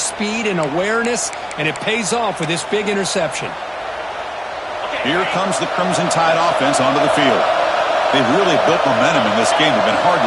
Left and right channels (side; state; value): both; identical; correlation 1.00